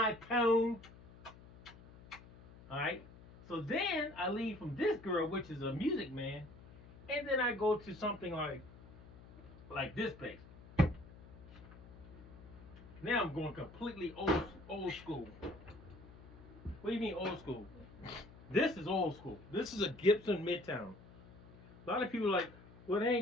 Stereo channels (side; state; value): left; noise; hum, 19 dB below the sound